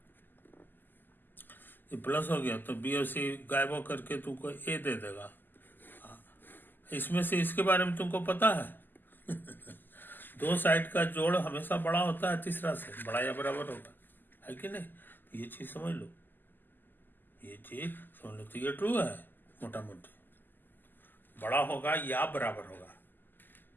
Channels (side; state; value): right; late; 0.090 ms